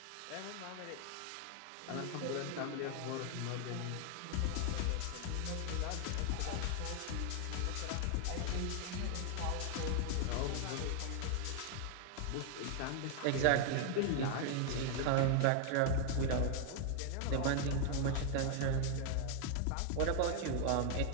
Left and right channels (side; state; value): both; different; correlation 0.00